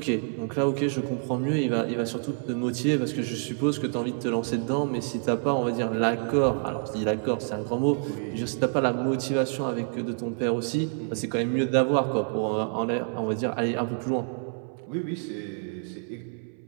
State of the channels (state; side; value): silent; left; 60 dB below the other